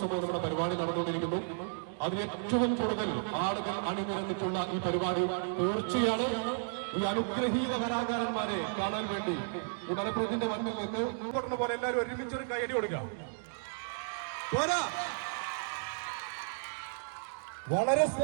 നമ്മുടെ പരിപാടി നടന്നുകൊണ്ടിരിക്കുന്നു. അതിൽ ഏറ്റവും കൂടുതൽ ആളുകൾ അണിനിരന്നിട്ടുള്ള ഈ പരിപാടി തീർച്ചയാണ് ഈ അനുഗ്രഹീത കലാകാരന്മാരെ കാണാൻ വേണ്ടി ഈ മലപ്പുറത്തിന്റെ മണ്ണിൽ നിന്ന് കൊടുക്കുന്ന പോലെ എല്ലാവരും ഒരുമിച്ചൊരു കൈയടി കൊടുക്കുക. വളരെ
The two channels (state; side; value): silent; left; digital silence